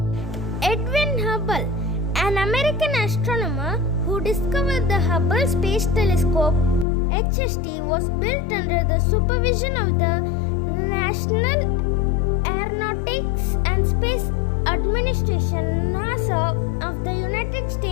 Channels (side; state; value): right; drops out; at 6.9 s